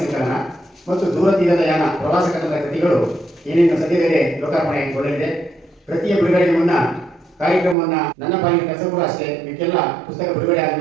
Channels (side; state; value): left; drops out; at 7.8 s